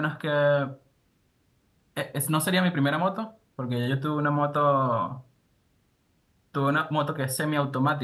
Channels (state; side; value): identical; both; correlation 1.00